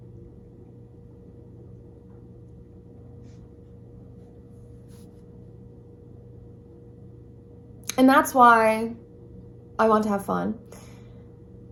And that's why I want to have fun.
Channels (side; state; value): both; identical; correlation 1.00